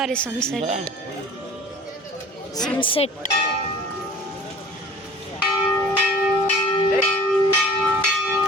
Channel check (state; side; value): normal; both; correlation 0.45